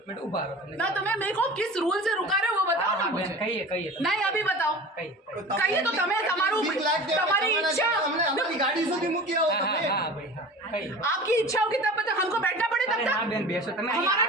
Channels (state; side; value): normal; both; correlation 0.38